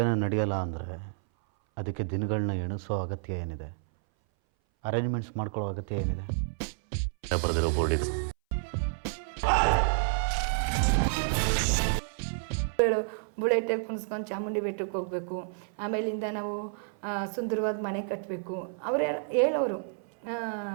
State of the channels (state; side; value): silent; left; 58 dB below the other